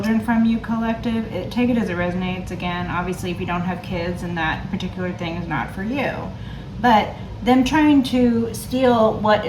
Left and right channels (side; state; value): both; identical; correlation 1.00